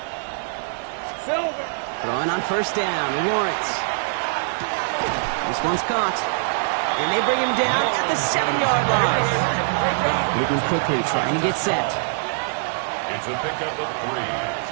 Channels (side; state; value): left; silent; digital silence